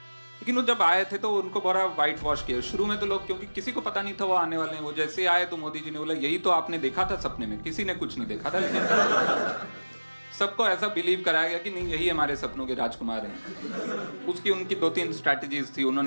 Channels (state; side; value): inverted; both; correlation -1.00